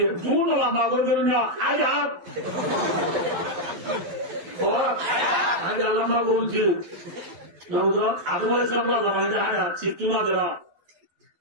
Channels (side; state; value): left; late; 12 ms